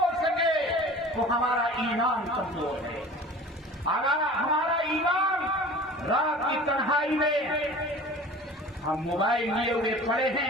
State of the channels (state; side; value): normal; both; correlation 0.42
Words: سکے تو ہمارا ایمان کمزور ہے. اگر ہمارا ایمان رات کی تنہائی میں ہم موبائل لیے ہوئے پڑے